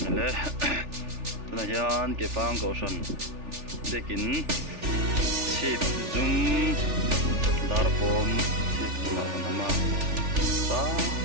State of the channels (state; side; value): late; left; 3.4 ms